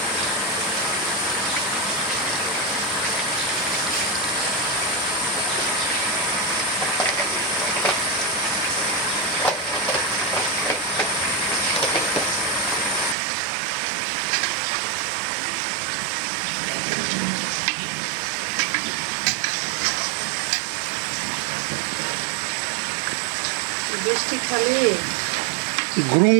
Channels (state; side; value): drops out; left; at 13.2 s